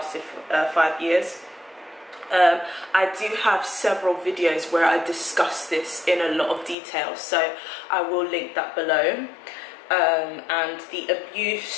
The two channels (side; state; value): right; drops out; at 6.8 s